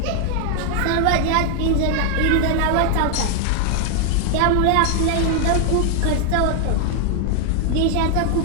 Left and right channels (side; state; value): both; different; correlation 0.00